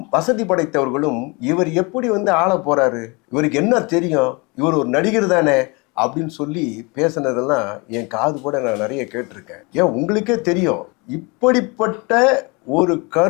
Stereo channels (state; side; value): quieter; right; 28.3 dB